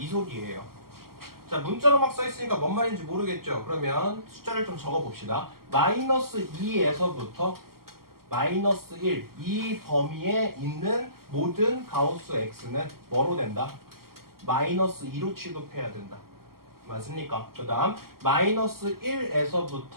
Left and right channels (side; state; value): left; late; 0.93 ms